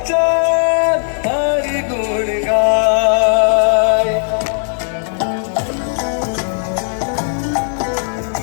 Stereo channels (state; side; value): silent; right; digital silence